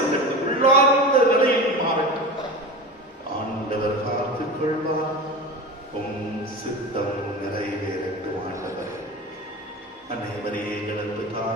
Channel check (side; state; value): both; normal; correlation 0.29